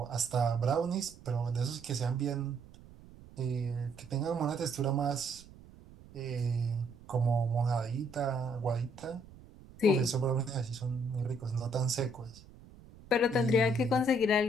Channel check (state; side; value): noise; right; rumble, 21 dB below the sound